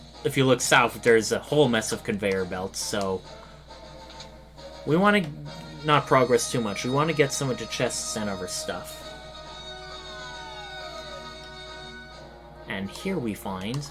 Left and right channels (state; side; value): identical; both; correlation 1.00